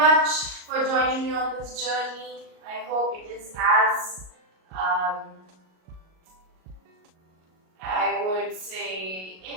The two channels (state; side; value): late; left; 38 ms